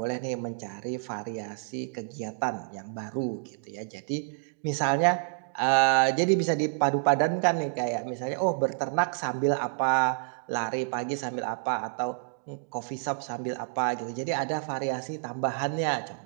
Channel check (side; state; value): left; silent; digital silence